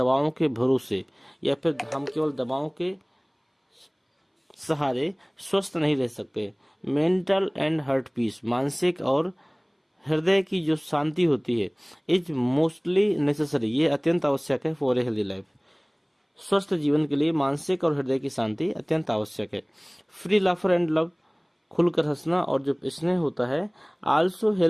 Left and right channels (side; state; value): both; identical; correlation 1.00